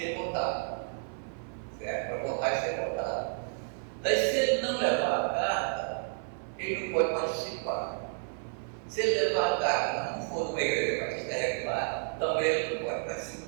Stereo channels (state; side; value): silent; left; 57 dB below the other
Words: votado. Certo? Para votar e ser votado. Daí, se ele não levar a carta, ele não pode participar. Se ele levar a carta, mas não for de uma igreja batista regular, também ele não pode